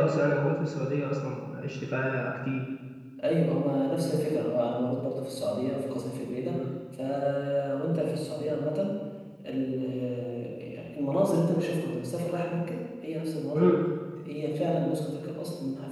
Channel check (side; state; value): both; identical; correlation 1.00